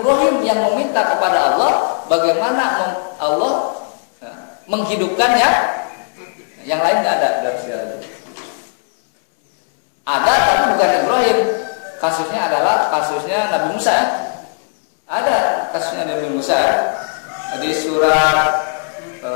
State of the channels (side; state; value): right; silent; 68 dB below the other